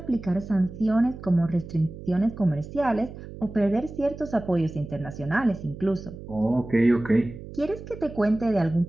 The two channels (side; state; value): right; noise; hum, 13 dB below the sound